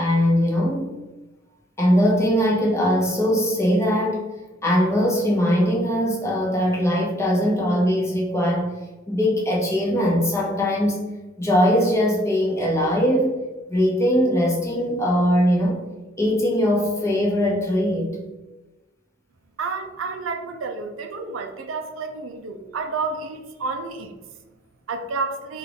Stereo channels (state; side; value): normal; both; correlation 0.65